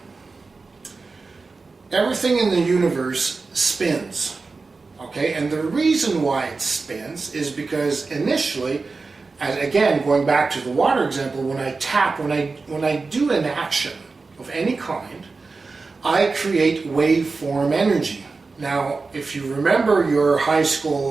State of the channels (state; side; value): quieter; left; 4.1 dB